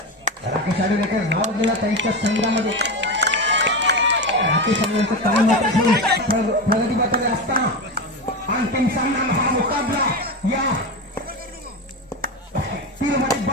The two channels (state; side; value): normal; both; correlation 0.19